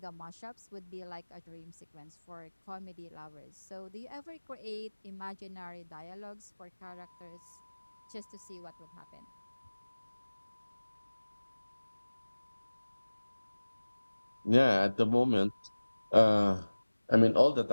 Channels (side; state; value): both; inverted; correlation -1.00